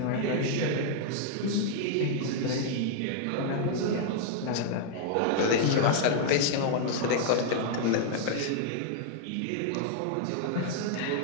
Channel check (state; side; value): different; both; correlation 0.00